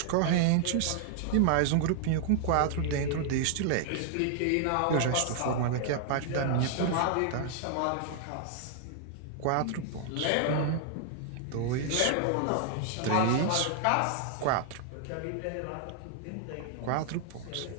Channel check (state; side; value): different; both; correlation 0.00